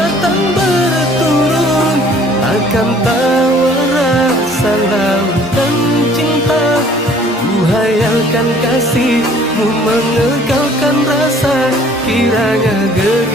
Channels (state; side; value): normal; both; correlation 0.55